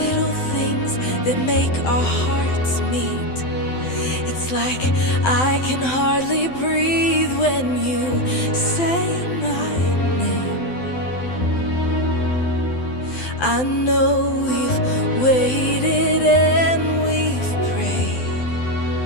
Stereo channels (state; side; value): late; right; 12 ms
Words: things that make our hearts meet. It's like I can hardly breathe when you say my name. I know we've waited and we've prayed,